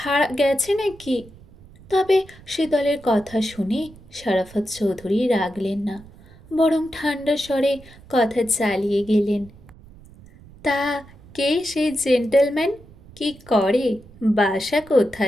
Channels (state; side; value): noise; right; rumble, 22 dB below the sound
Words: গেছে নাকি? তবে শীতলের কথা শুনে শরাফত চৌধুরী রাগলেন না, বরং ঠান্ডা স্বরে কথা চালিয়ে গেলেন। তা কে সেই জেন্টলম্যান? কি করে? বাসা